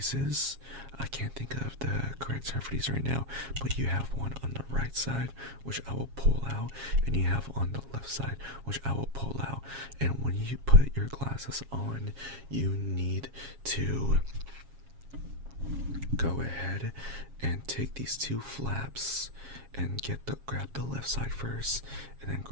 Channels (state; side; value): late; left; 7.4 ms